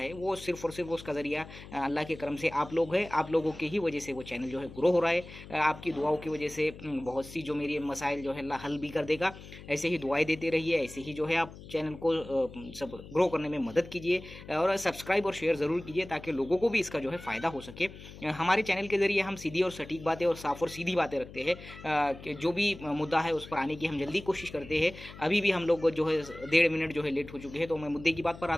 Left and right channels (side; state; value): left; noise; hum, 16 dB below the sound